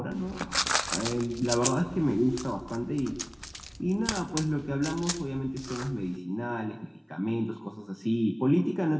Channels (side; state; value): both; identical; correlation 1.00